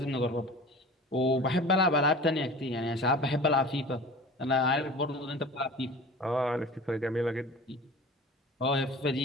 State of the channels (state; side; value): normal; both; correlation 0.39